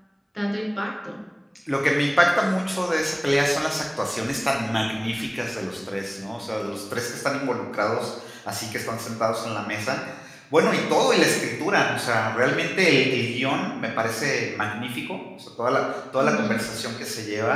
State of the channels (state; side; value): identical; both; correlation 1.00